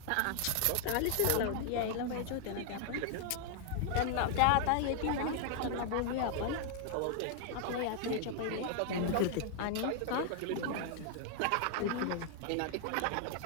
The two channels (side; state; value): both; different; correlation 0.00